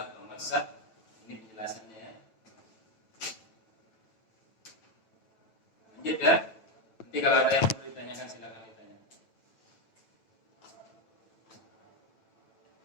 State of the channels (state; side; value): late; right; 9.1 ms